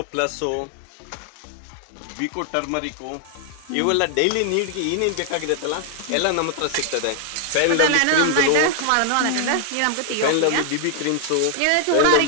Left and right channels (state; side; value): different; both; correlation 0.00